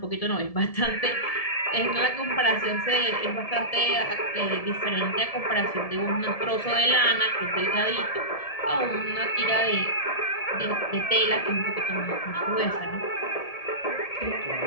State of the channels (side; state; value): right; late; 1.7 ms